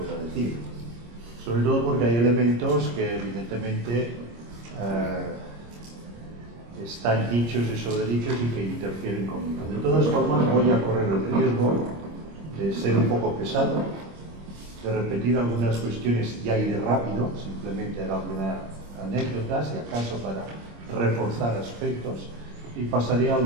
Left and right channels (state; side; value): late; left; 26 ms